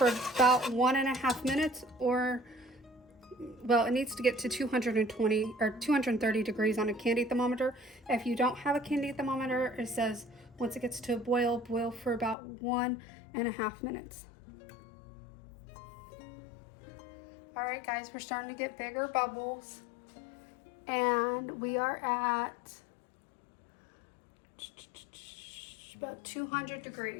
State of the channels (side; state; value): right; drops out; at 12.4 s